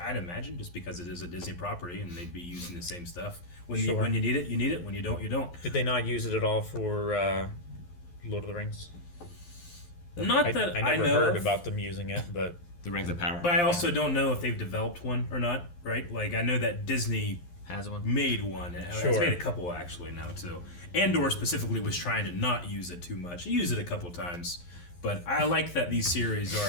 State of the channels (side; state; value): right; late; 11 ms